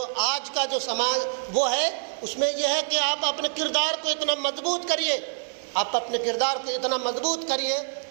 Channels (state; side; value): silent; left; digital silence